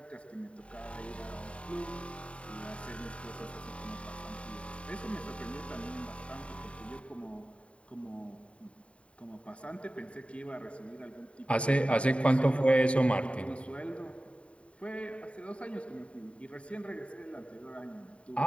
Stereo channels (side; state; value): right; late; 0.062 ms